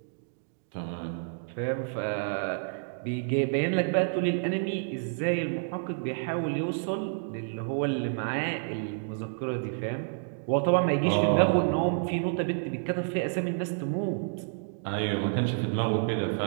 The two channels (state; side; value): silent; left; digital silence